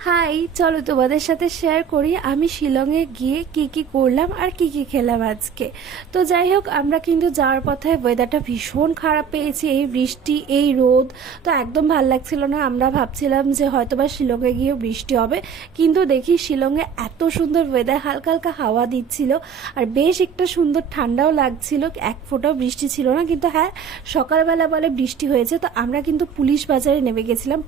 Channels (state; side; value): quieter; left; 7.0 dB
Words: High, চলো তোমাদের সাথে শেয়ার করি আমি শিলংয়ে গিয়ে কি কি করলাম আর কি কি খেলাম আজকে। তো যাই হোক, আমরা কিন্তু যাওয়ার পথে ওয়েদারটা ভীষণ খারাপ পেয়েছি, এই বৃষ্টি এই রোদ, তো একদম ভাল লাগছিল না। আমরা ভাবছিলাম যে হয়তোবা শিলংয়ে গিয়ে বৃষ্টি হবে, কিন্তু দেখি শিলংয়ে এত সুন্দর ওয়েদার, হালকা হালকা হাওয়া দিচ্ছিল আর বেশ একটা সুন্দর ঠান্ডাও লাগছিল, এক ফোঁটাও বৃষ্টি ছিল না। কিন্তু হ্যাঁ, সকালবেলা বলে বৃষ্টি হয়েছে। তো আমরা কিন্তু পুলিশ বাজারে নেমে গেছিলাম,